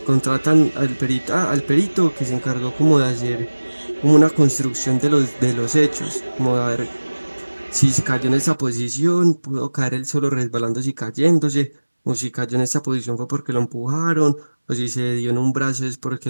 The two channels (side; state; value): both; inverted; correlation -1.00